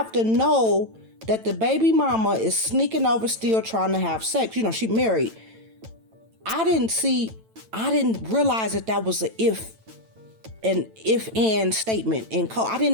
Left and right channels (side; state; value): left; late; 9.0 ms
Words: to know that the baby mama is sneaking over still trying to have sex. She married. I didn't realize that was an if-and statement in code. I